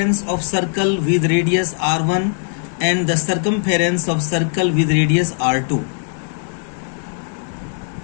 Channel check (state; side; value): silent; right; 66 dB below the other